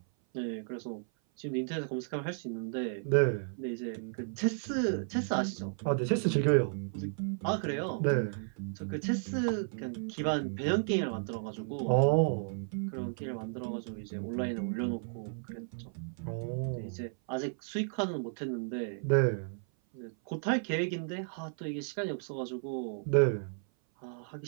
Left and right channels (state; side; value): silent; left; 55 dB below the other